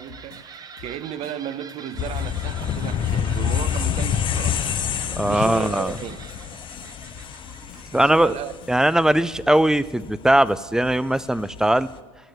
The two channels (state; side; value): normal; both; correlation 0.81